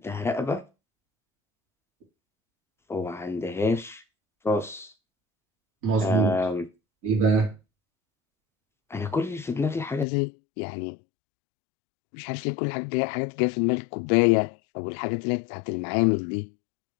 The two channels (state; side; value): drops out; right; at 10.1 s